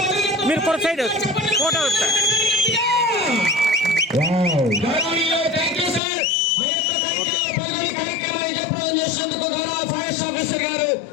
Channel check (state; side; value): drops out; right; at 6.0 s